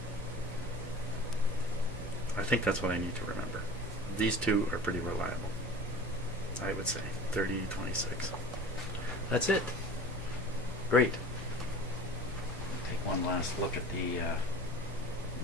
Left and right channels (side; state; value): both; normal; correlation 0.38